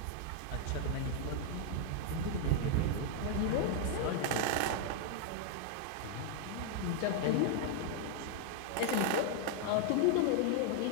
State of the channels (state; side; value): different; both; correlation 0.00